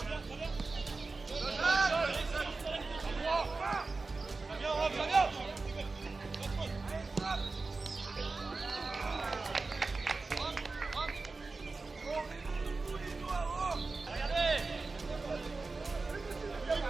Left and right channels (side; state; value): left; quieter; 3.8 dB